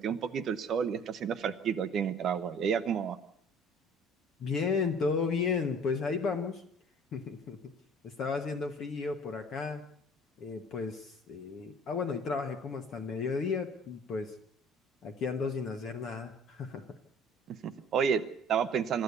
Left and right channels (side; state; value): both; normal; correlation 0.50